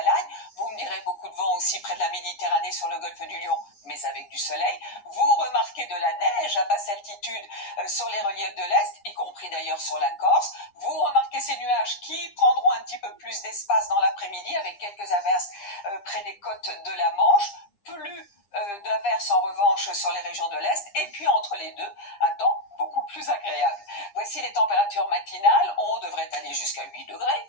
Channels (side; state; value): right; late; 9.9 ms